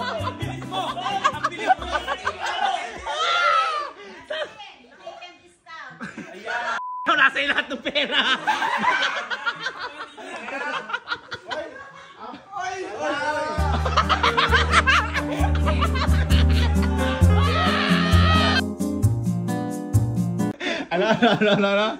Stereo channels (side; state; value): both; identical; correlation 1.00